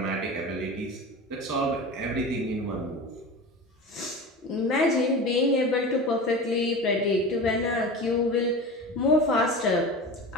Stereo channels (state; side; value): normal; both; correlation 0.31